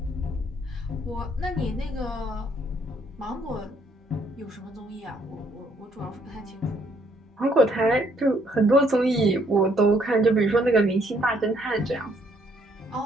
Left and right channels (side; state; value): both; normal; correlation 0.68